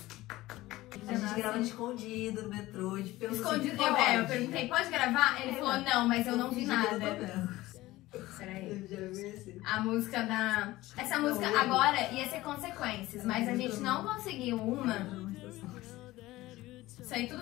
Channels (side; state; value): right; quieter; 17.8 dB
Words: A gente grava escondido no metrô, de pelo Escondido. Eu perguntei, pode gravar? Ele falou, não, mas eu não vi nada. Peraí. Eu já vi esse. A música da... Essa música agora ia ser Consequências, mas a gente não conseguiu uma. Isso aí tudo